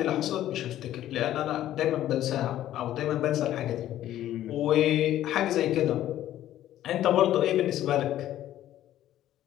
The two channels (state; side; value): quieter; right; 12.8 dB